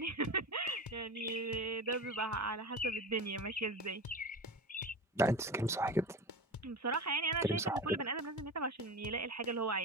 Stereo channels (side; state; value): both; normal; correlation 0.27